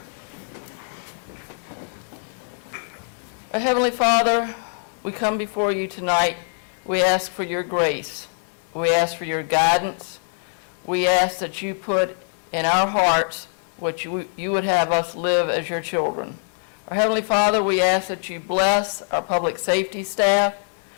Our Heavenly Father, we come before you tonight. We ask for your grace. We ask for your guidance. We ask that you put in our hearts what you would have us live as your children. Our Heavenly Father, we ask that you bless our public safety staff.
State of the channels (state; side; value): silent; right; 63 dB below the other